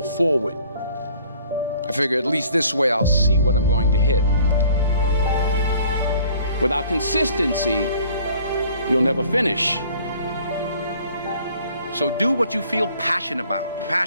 forward. I figure at least this way I'll see what I'm going to hit. Without consistency, you'll never finish. So do what you feel passionate about.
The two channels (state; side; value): inverted; both; correlation -0.54